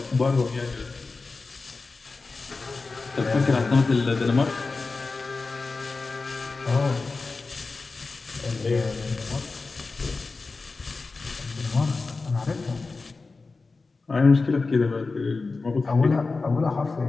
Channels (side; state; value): right; quieter; 3.9 dB